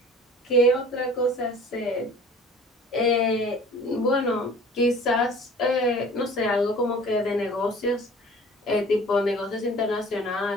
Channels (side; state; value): both; normal; correlation 0.46